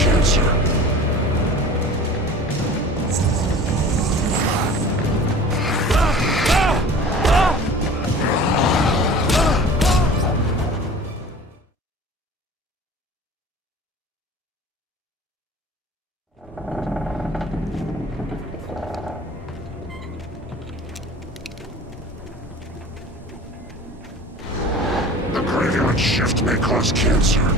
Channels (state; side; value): normal; both; correlation 0.41